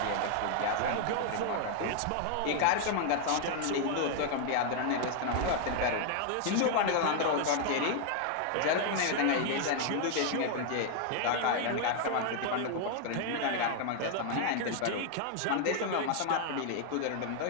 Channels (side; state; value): both; different; correlation 0.00